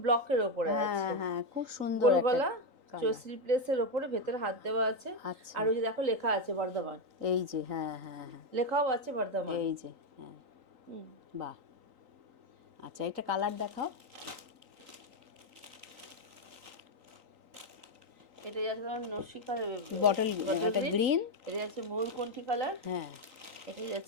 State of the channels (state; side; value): late; left; 3.9 ms